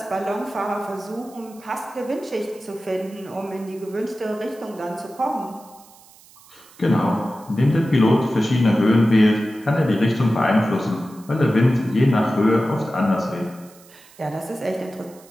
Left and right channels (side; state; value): right; noise; hiss, 25 dB below the sound